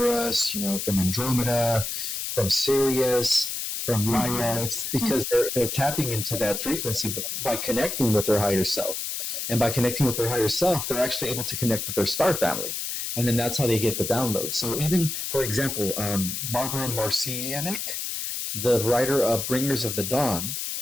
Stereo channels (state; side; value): noise; left; hiss, 4 dB below the sound